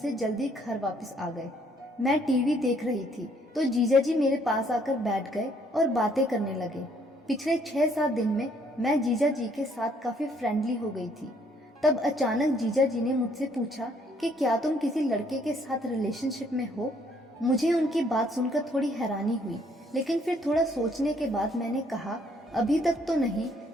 जल्दी घर वापस आ गए। मैं टीवी देख रही थी तो जीजा जी मेरे पास आकर बैठ गए और बातें करने लगे। पिछले 6-7 दिन में मैं जीजा जी के साथ काफी फ्रेंडली हो गई थी। तब अचानक जीजा जी ने मुझसे पूछा कि क्या तुम किसी लड़के के साथ रिलेशनशिप में हो। मुझे उनकी बात सुनकर थोड़ी हैरानी हुई, लेकिन फिर थोड़ा सोचने के बाद मैंने कहा, अभी तक तो नहीं,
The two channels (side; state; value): both; normal; correlation 0.66